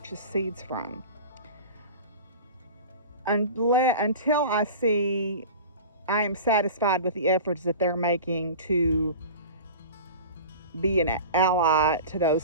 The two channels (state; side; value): inverted; both; correlation -0.35